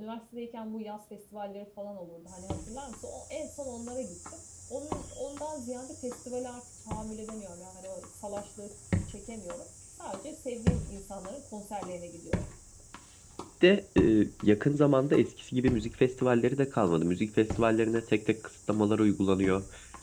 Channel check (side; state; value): both; identical; correlation 1.00